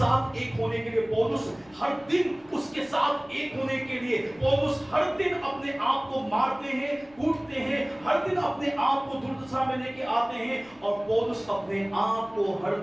एक होने के लिए पौलुस हर दिन उसके साथ एक होने के लिए पौलुस हर दिन अपने आप को मारते हैं, कूटते हैं, हर दिन अपने आप को दुर्दशा में लेके आते हैं और पौलुस अपने आप को हर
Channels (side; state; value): left; noise; rumble, 28 dB below the sound